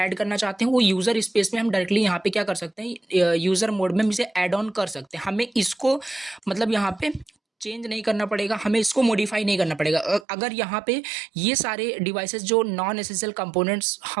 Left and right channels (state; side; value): drops out; left; at 10.2 s